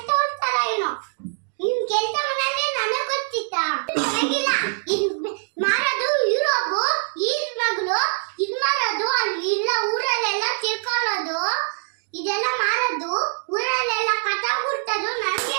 ಹೋಗ್ತಾರ ಏನೋ ನೀನ್ ಕೆಲಸ ಮಾಡನೆ ನನಗೆ ಗೊತ್ತಿತ್ತಾ ಆಗಿಲ್ಲ ಮಾರದು ಯುರೋಪ್ ಈದ್ ಮಗಳು ಇದ್ ಮಾರದು ಅಲ್ಲಿ ಇಲ್ಲ ಊರಲ್ಲೆಲ್ಲ ತಿಳ್ಕೊಳ್ಳೋದು ಇದೆಲ್ಲ ಮಾರದು ಊರಲ್ಲೆಲ್ಲ ಕಥಾ ಬಿಡ್ತದು ನನಗೆ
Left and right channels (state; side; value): silent; left; digital silence